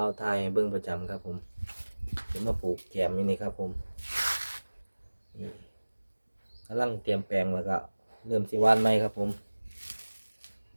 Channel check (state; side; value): inverted; both; correlation -1.00